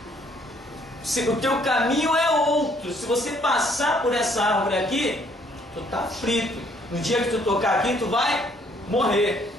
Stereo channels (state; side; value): normal; both; correlation 0.65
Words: O teu caminho é outro. Se você passar por essa árvore aqui, tu está frito. No dia que tu tocar aqui, tu vai morrer.